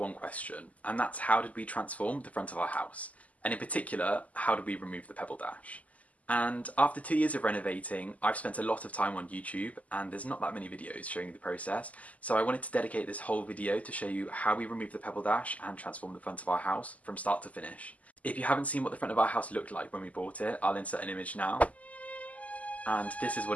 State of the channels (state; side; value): late; right; 0.072 ms